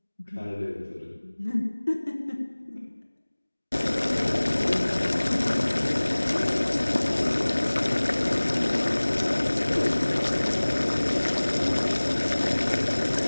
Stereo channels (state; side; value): inverted; both; correlation -1.00